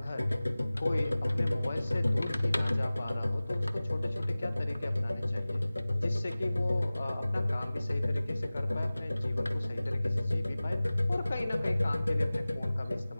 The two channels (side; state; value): both; inverted; correlation -0.98